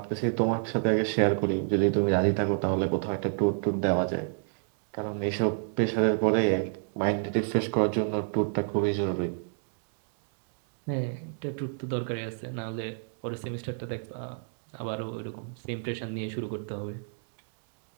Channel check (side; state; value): left; silent; digital silence